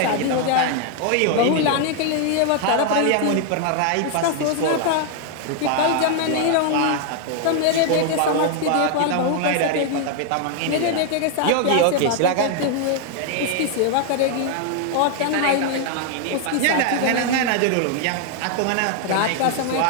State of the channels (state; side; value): different; both; correlation 0.00